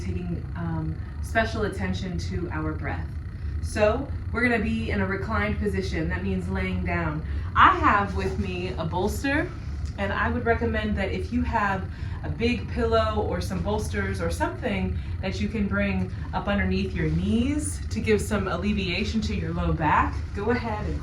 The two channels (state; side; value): identical; both; correlation 1.00